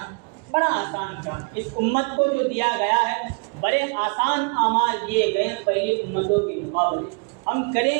بڑا آسان کام، اس امت کو جو دیا گیا ہے بڑے آسان اعمال دیے گئے ہیں پہلی امتوں کے مقابلے۔ ہم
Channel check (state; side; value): quieter; left; 33.2 dB